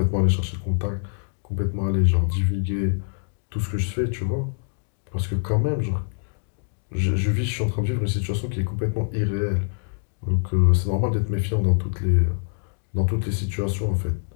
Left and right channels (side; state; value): right; silent; digital silence